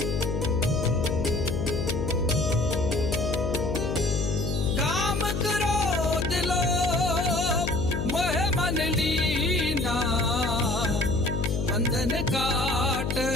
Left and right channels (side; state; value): left; noise; hum, 1 dB below the sound